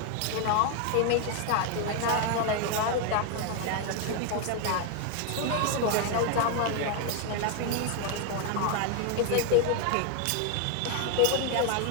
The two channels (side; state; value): both; different; correlation 0.01